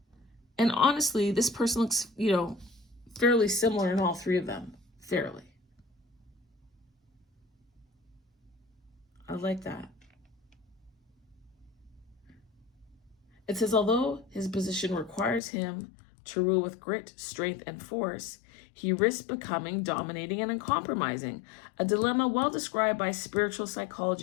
And honestly, this person looks, fairly similar in all 3 of them. Fairly. I like that. It says, although his position requires him to rule with grit, strength, and force, he risks becoming dominating and uncompromising, a dilemma well described by spiritual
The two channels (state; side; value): drops out; right; at 15.4 s